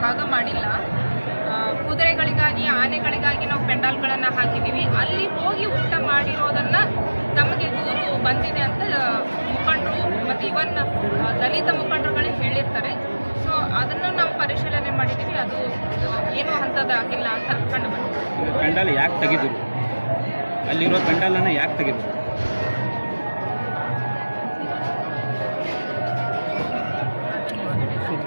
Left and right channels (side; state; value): both; inverted; correlation -1.00